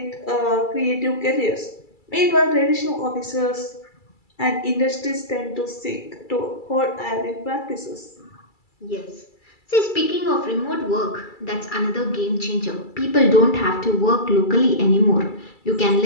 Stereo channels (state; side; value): late; right; 2.3 ms